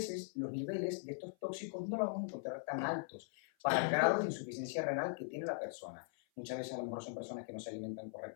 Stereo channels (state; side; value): silent; right; 51 dB below the other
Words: los niveles de estos tóxicos no los vamos a encontrar tan altos para el grado de insuficiencia renal que tiene la persona. Muchas veces a lo mejor son personas que no se alimentan